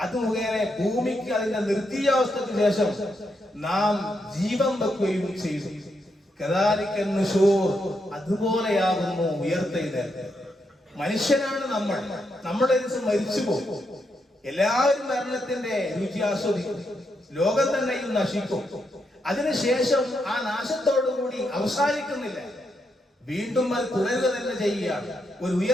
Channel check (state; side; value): normal; both; correlation 0.81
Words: അത് മുഖേന ഭൂമിക്ക് അതിന്റെ നിർജീവാവസ്ഥയ്ക്ക് ശേഷം നാം ജീവൻ വെക്കുകയും ചെയ്തു. അതുപോലെയാകുന്നു ഉയർത്തെഴുന്നേൽപ്പ്. മനുഷ്യനാണ് നമ്മൾ, നമ്മുടെ ദിവസം മരിച്ചു പോകും. എല്ലാവരും മരണത്തിന്റെ രുചി ആസ്വദിക്കും, ലോകം തന്നെയും നശിക്കും. അതിനുശേഷം ആ നാശത്തോടുകൂടി അവസാനിക്കുന്നില്ല, വീണ്ടും അത് തുടരുക തന്നെ ചെയ്യുകയാണ്. ഒരു